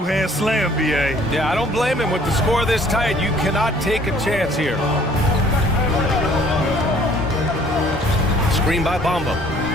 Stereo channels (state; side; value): normal; both; correlation 0.57